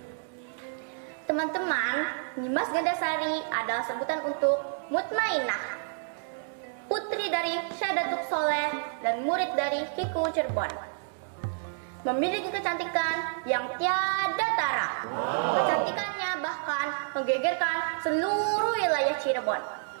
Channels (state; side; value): silent; left; digital silence